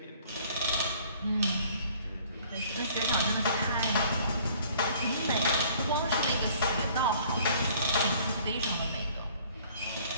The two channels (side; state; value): both; inverted; correlation -0.55